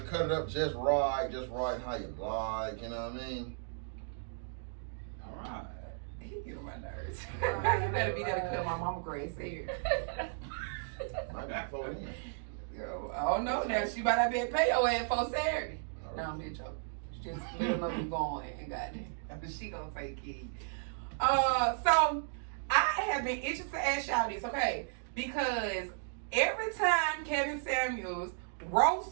cut it up just right how you like, you know what I mean? Alright. He get on my nerves. You better be there to cut my mama Grace hair. Might be before then. Yo, I don't know now. She might not be able to pay your ass for Saturday. No, I'm just joking. Just let her know you going and goddamn. She gonna take it. So I have been itching to ask y'all this, okay? Because every time Kevin Samuels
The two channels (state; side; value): silent; left; digital silence